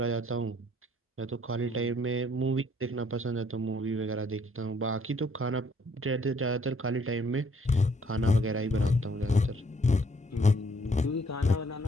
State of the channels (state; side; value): normal; both; correlation 0.64